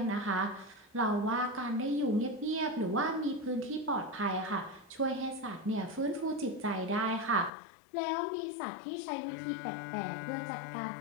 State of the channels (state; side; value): drops out; right; at 7.5 s